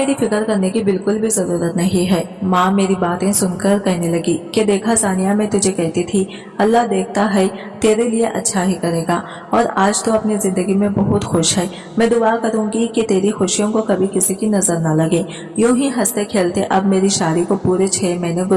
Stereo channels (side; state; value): both; identical; correlation 1.00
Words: फिक्र करने की बिल्कुल भी जरूरत नहीं है। माँ मेरी बातें सुनकर कहने लगी कि देखा सानिया, मैं तुझे कहती थी अल्लाह देखता है, तेरे लिए अच्छा ही करेगा और आज तो अपनी जिंदगी में बहुत खुश है। मैं दुआ करूंगी कि तेरी खुशियों को कभी किसी की नजर न लगे। यूं ही हंसते खेलते अब मेरी शादी को पूरे 6 महीने